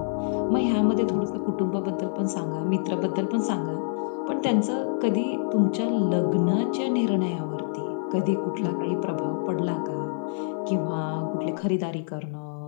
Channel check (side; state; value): right; silent; 61 dB below the other